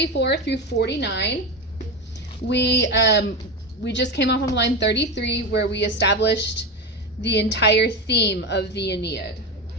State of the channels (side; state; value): both; normal; correlation 0.19